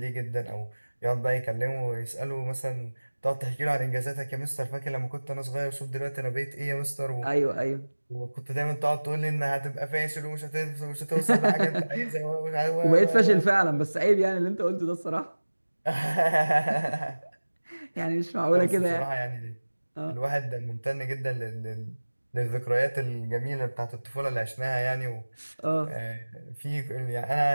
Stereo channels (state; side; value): inverted; both; correlation -1.00